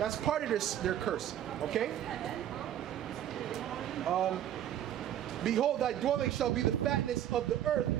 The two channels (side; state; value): left; quieter; 11.1 dB